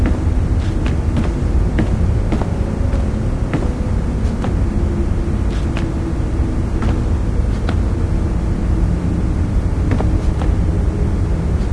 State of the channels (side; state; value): both; identical; correlation 1.00